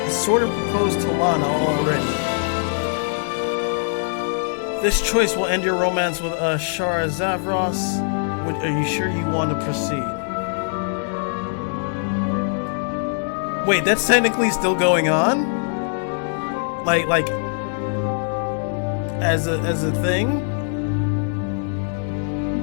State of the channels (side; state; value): right; silent; 64 dB below the other